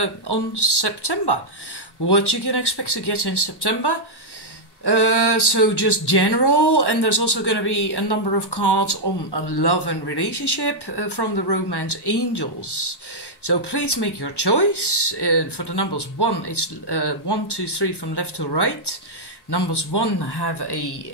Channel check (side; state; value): right; late; 1.1 ms